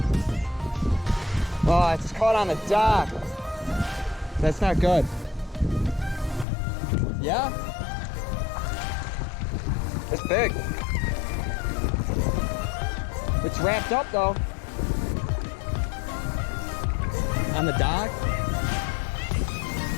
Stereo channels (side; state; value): right; drops out; at 6.5 s